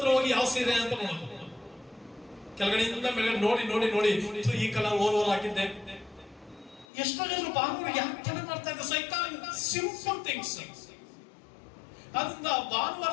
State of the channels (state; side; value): drops out; right; at 6.9 s